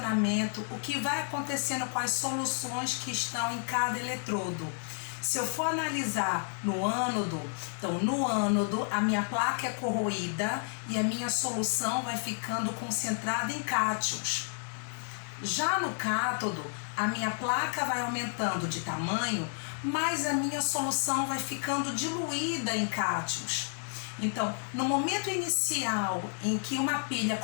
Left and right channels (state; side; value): silent; right; 57 dB below the other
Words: o que vai acontecendo com as soluções que estão em cada eletrodo? Se eu for analisar no ânodo, então no ânodo a minha placa é corroída e a minha solução vai ficando concentrada em cátions. Já no cátodo, a minha placa vai aumentando de tamanho, mas a minha solução vai ficando diluída em cátions. Então, no momento inicial em que uma pilha